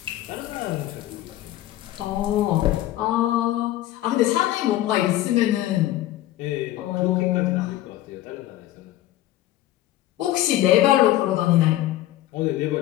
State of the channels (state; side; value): quieter; right; 14.5 dB